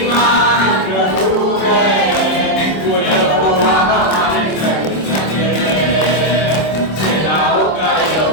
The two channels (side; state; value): right; late; 26 ms